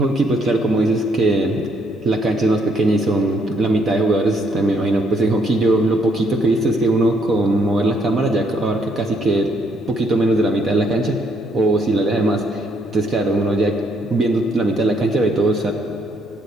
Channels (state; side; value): normal; both; correlation 0.70